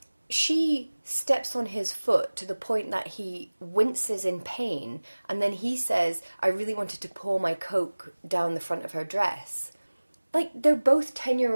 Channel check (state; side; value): inverted; both; correlation -1.00